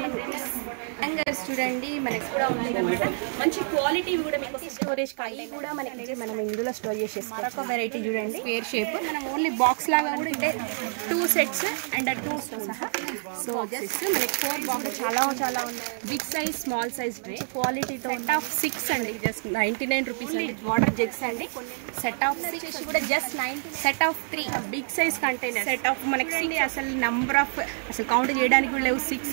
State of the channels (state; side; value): silent; left; digital silence